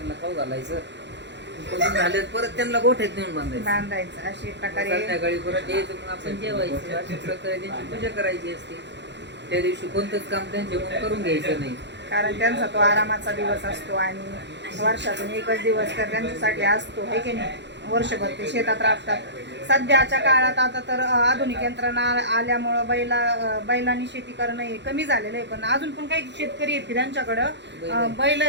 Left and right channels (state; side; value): late; left; 0.51 ms